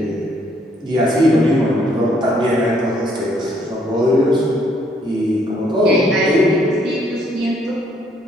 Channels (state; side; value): normal; both; correlation 0.68